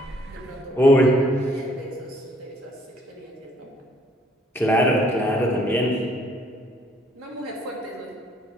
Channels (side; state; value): both; normal; correlation 0.64